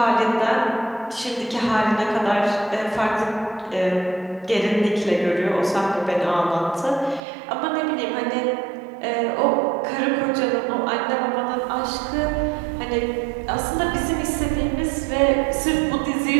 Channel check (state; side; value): drops out; left; at 7.2 s